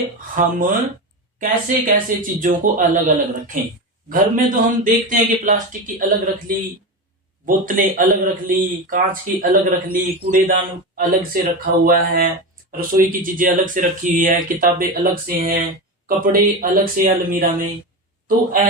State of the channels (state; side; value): normal; both; correlation 0.20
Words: हम कैसे कैसे चीजों को अलग अलग रखें। घर में तो हम देखते हैं कि प्लास्टिक की अलग रख ली, बोतलें अलग रख ली, कांच की अलग रख ली, कूड़ेदान अलग से रखा हुआ है, रसोई की चीजें अलग से रखी हुई है, किताबें अलग से हैं, कपड़े अलग से अलमीरा में। तो